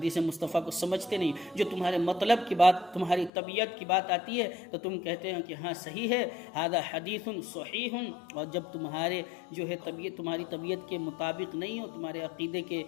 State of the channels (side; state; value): right; drops out; at 3.3 s